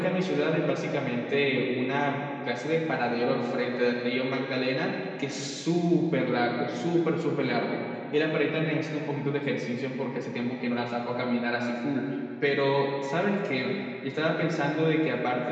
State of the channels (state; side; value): identical; both; correlation 1.00